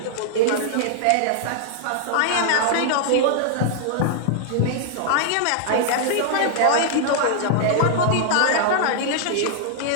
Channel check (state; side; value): different; both; correlation -0.01